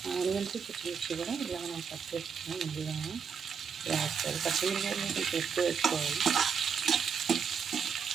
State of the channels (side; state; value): left; quieter; 6.5 dB